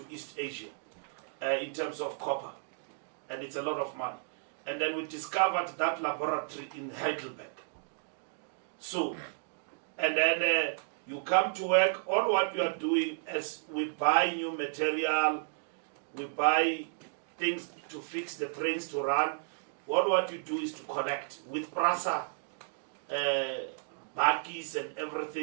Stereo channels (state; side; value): silent; left; digital silence